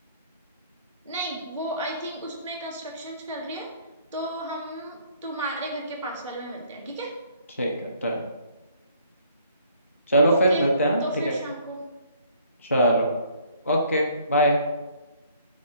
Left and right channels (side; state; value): both; inverted; correlation -0.61